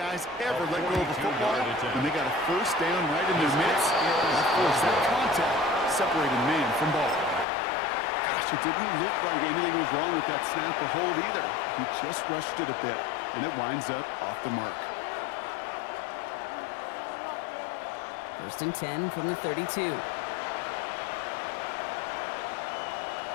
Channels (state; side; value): drops out; right; at 7.5 s